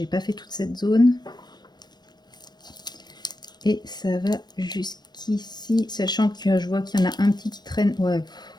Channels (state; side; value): late; right; 0.20 ms